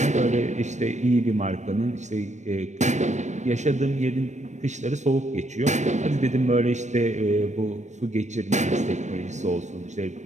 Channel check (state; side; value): late; left; 0.34 ms